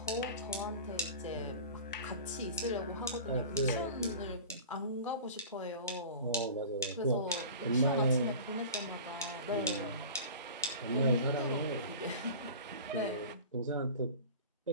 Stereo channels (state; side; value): inverted; both; correlation -0.37